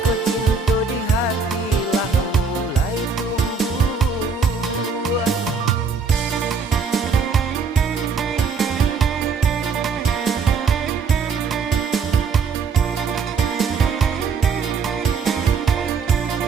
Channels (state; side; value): quieter; left; 5.2 dB